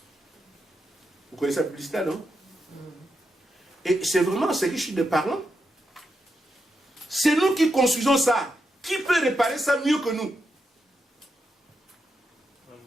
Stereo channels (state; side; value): normal; both; correlation 0.85